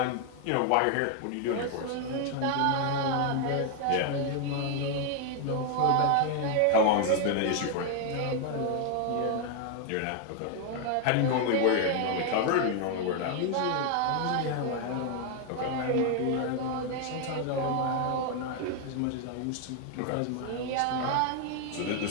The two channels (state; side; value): different; both; correlation 0.00